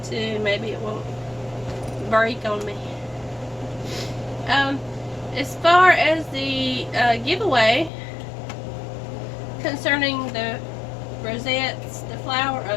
too. Maybe it won't break on me. As far as the giveaway concerning the rosettes, the flower,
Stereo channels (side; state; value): right; drops out; at 7.9 s